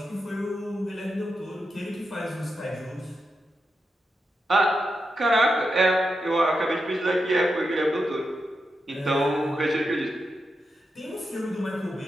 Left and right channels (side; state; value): both; normal; correlation 0.87